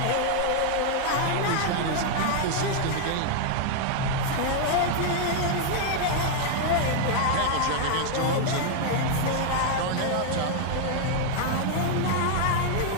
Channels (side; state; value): both; different; correlation 0.00